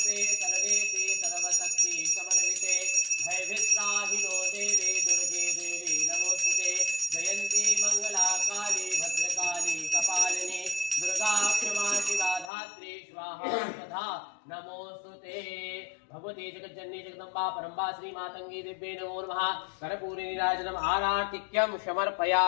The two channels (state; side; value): drops out; right; at 12.5 s